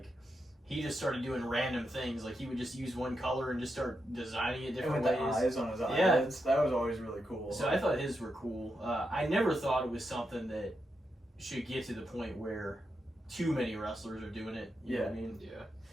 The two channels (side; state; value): both; normal; correlation 0.85